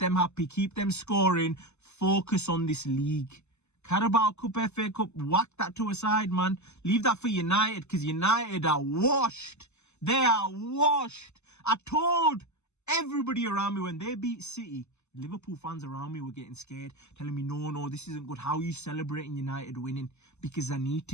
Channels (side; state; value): right; late; 0.82 ms